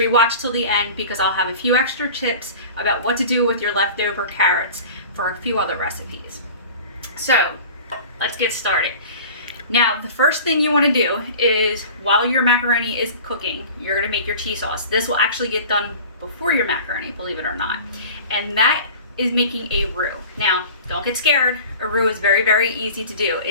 you watch till the end, because I'll have a few extra tips about what to do with your leftover carrots for a few other recipes. So let's get started. Now, the first thing you want to do is, while your macaroni is cooking, you're going to make your cheese sauce. This will actually get done before your macaroni, believe it or not, and that is making a roux. Now, don't get scared. A roux is very, very easy to do.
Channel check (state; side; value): inverted; both; correlation -0.40